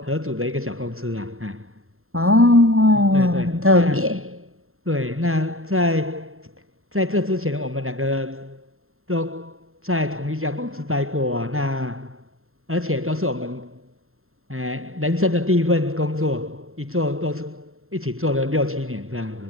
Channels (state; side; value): late; left; 0.61 ms